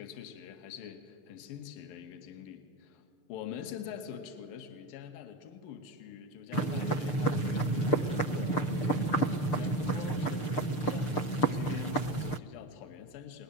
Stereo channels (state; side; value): late; right; 6.7 ms